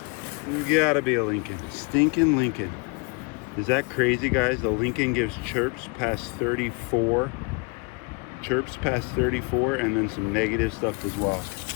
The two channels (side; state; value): right; quieter; 31.2 dB